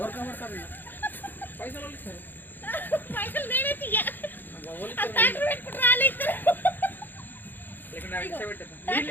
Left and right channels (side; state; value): right; late; 0.091 ms